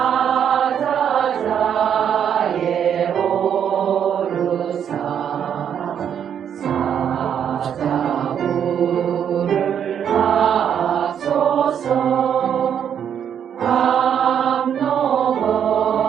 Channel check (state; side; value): quieter; left; 8.7 dB